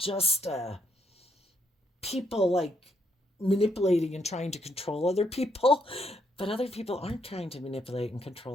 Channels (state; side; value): normal; both; correlation 0.73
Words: people like manipulating and trying to control other people. But other people aren't trying to manipulate and